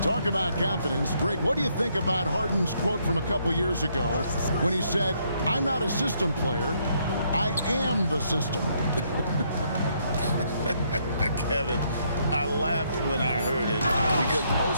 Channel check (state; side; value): inverted; both; correlation -0.72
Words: Talk about confidence. Greg, what do you think about Harden's quote from a couple years ago when he said, I'm not a system player, I am the system? Kevin, I laughed when I heard it because